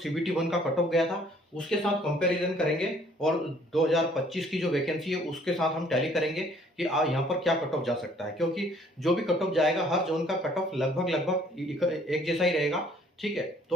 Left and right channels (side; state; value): both; normal; correlation 0.60